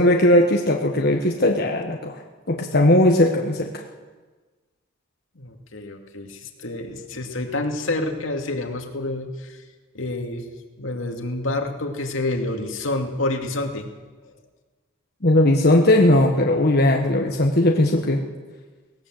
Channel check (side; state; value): both; normal; correlation 0.36